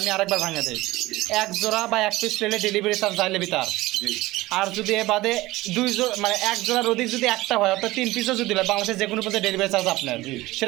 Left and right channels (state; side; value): quieter; left; 18.7 dB